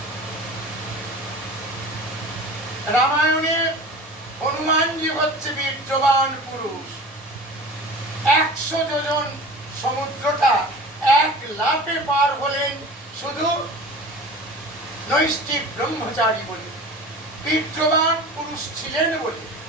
রামায়ণে হনুমানজি হচ্ছে বীর্যবান পুরুষ। 100 যোজন সমুদ্রটা এক লাফে পার হলেন শুধু নৈষ্ঠিক ব্রহ্মচারী বলে, বীর্যবান পুরুষ ছিলেন বলে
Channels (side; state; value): both; normal; correlation 0.38